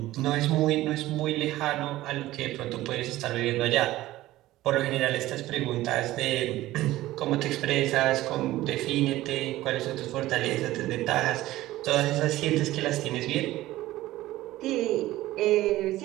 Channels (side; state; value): left; quieter; 16.3 dB